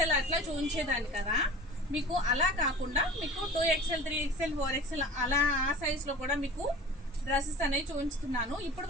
అట్లా చూపించేదాన్ని కదా, మీకు అలా కాకుండా మీకు 2XL 3XL 4XL అలా ఆ సైజులో కూడా మీకు డ్రెస్సెస్ అనేవి చూపించుతున్నాను. ఇప్పటి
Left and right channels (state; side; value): normal; both; correlation 0.39